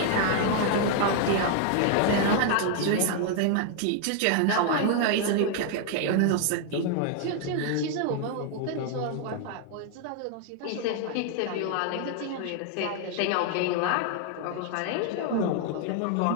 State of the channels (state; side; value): different; both; correlation 0.00